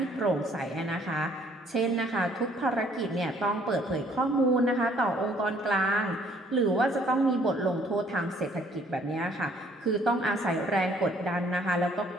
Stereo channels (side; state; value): both; normal; correlation 0.61